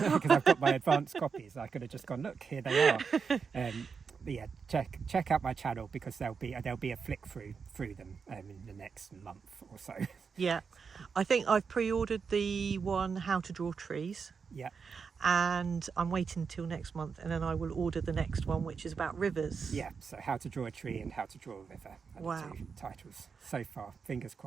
I've got my advanced copies. I could have just gone, look, here they are. But yeah, check out my channel because there'll be a flick through them in the next month or so. Yeah, I think I've pre-ordered the one How to Draw Trees. Yeah. And I'm waiting until next month, and then I will order the next one, which is about rivers. Yeah, so How to Draw a Tree and How to Draw a River are Wow. the two titles so far. Fingers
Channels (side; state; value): left; quieter; 5.7 dB